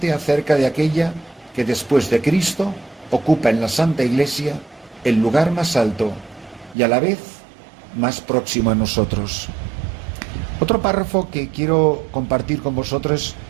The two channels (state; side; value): drops out; left; at 6.8 s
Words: acerca de aquella que después de Cristo ocupa en la Santa Iglesia el lugar más alto y a la vez más próximo a nosotros. Otro párrafo que quiero compartir con vosotros